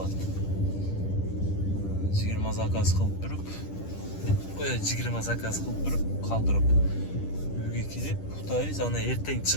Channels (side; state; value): right; late; 10 ms